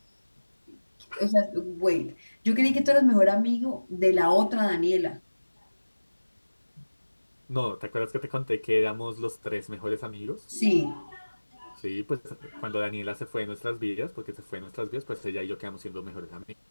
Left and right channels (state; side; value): inverted; both; correlation -1.00